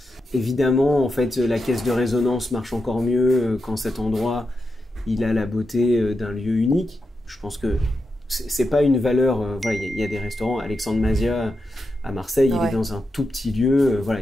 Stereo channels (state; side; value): normal; both; correlation 0.87